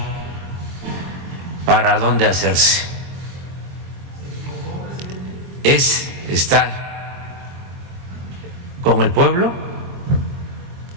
para dónde hacerse. Es estar con el pueblo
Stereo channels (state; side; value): late; left; 23 ms